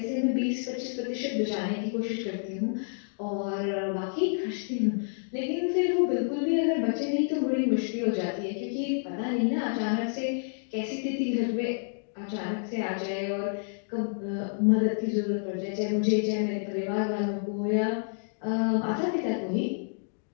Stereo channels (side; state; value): right; silent; digital silence